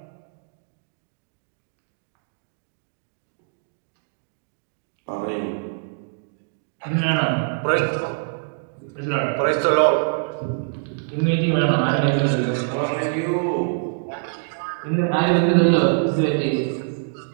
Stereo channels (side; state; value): left; silent; digital silence